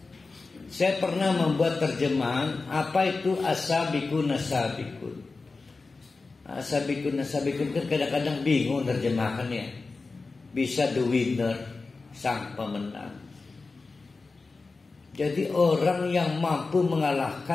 Saya pernah membuat terjemahan apa itu as-sabiqun as-sabiqun. As-sabiqun as-sabiqun kan kadang-kadang bingung terjemahannya. Bisa the winner, sang pemenang. Jadi orang yang mampu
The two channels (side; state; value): right; quieter; 3.9 dB